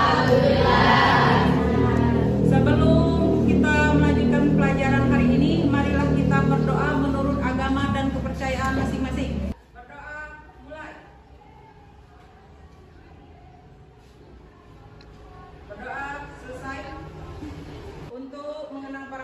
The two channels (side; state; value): both; identical; correlation 1.00